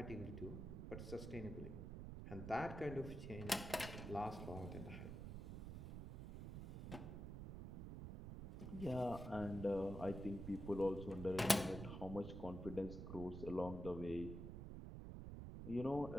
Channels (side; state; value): right; noise; rumble, 7 dB below the sound